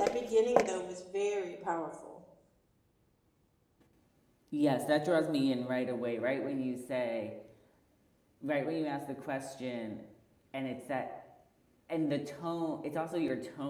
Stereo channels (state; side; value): identical; both; correlation 1.00